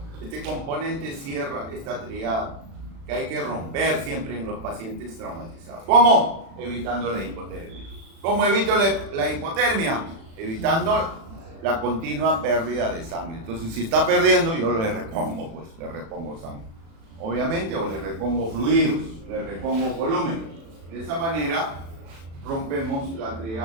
este componente cierra esta triada que hay que romper siempre en los pacientes traumatizados. ¿Cómo? Evitando la hipotermia. ¿Cómo evito la hipotermia? Evitando la continua pérdida de sangre. Entonces, si está perdiendo, yo le repongo, pues, le repongo sangre. Obviamente, o le repongo fluidos, le repongo volumen. De esa manera, rompemos la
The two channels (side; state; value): left; late; 36 ms